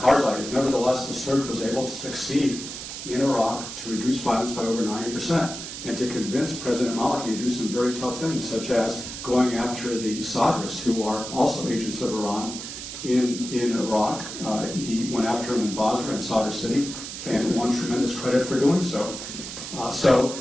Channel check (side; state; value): right; noise; hiss, 9 dB below the sound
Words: is. Nevertheless, the surge was able to succeed in Iraq to reduce violence by over 90% and to convince President Maliki to do some very tough things, such as going after the Sadrists, who are also agents of Iran in Iraq. He went after them in Basra and Sadr City and won tremendous credit for doing so.